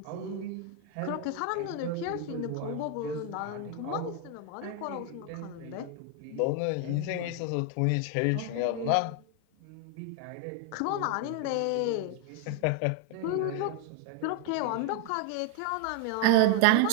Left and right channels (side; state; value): both; different; correlation 0.00